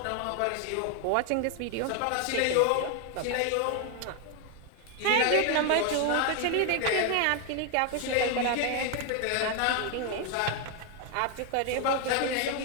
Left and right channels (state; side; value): different; both; correlation 0.01